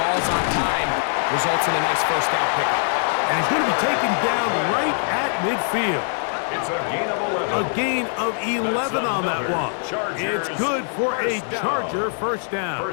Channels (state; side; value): silent; right; 64 dB below the other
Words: ball's on time, results in a nice first down pickup. And he's going to be taken down right at midfield. It's a gain of 11. A gain of 11 on that one. It's good for a Charger first down.